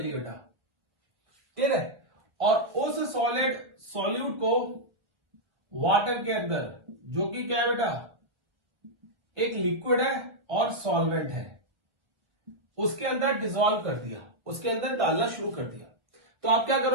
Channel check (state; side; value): late; left; 1.2 ms